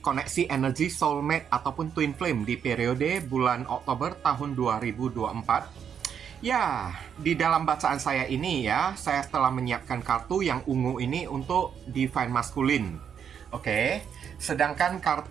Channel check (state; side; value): quieter; left; 7.9 dB